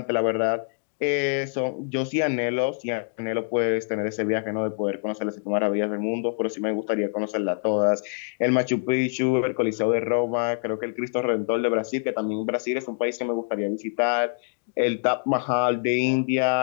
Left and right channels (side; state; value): right; silent; digital silence